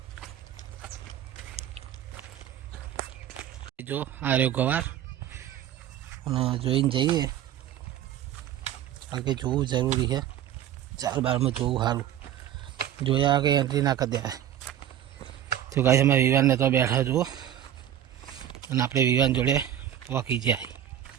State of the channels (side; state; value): left; quieter; 11.1 dB